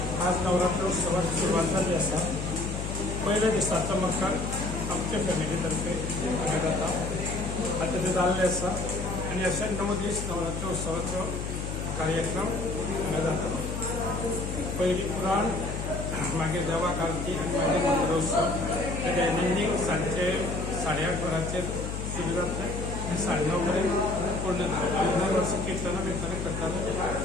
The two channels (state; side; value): noise; left; hum, 5 dB below the sound